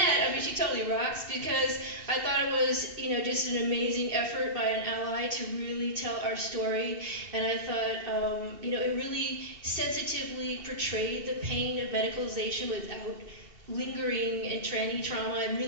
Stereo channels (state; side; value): late; left; 2.7 ms